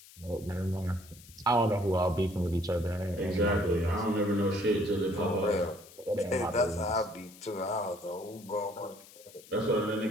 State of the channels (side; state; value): left; noise; hiss, 21 dB below the sound